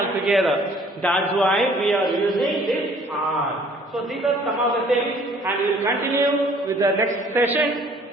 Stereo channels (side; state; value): both; normal; correlation 0.56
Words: That's why we are using this are. So these are some of the things, and we will continue with the next session